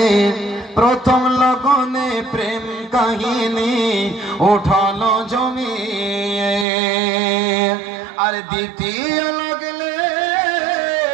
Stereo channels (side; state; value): left; drops out; at 6.7 s